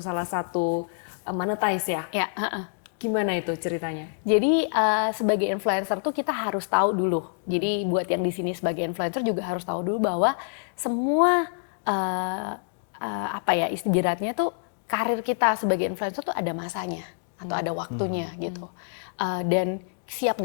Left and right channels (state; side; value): silent; right; digital silence